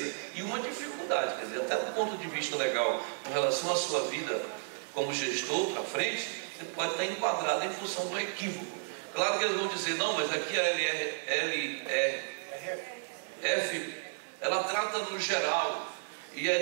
e uma dificuldade. Quer dizer, até do ponto de vista legal, com relação à sua vida como gestor para frente, você pode estar enquadrado em função do equívoco. Claro que eles vão dizer, não, mas aqui a LRF, ela trata no geral, e a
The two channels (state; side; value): silent; left; digital silence